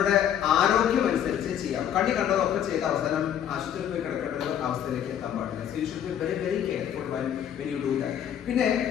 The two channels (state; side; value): quieter; right; 9.8 dB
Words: ആരോഗ്യം അനുസരിച്ച് ചെയ്യാം. കണ്ടതൊക്കെ ചെയ്ത അവസാനം ആശുപത്രിയിൽ പോയി കിടക്കേണ്ട അവസ്ഥയിലേക്ക് എത്താൻ പാടില്ല. So you should be very very careful when you do that. പിന്നെ